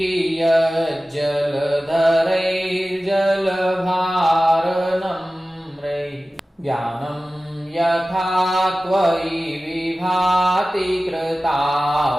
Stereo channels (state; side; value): normal; both; correlation 0.96